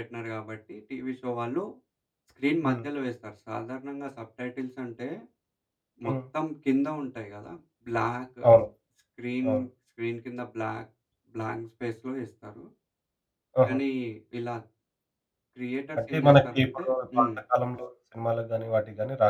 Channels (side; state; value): both; identical; correlation 1.00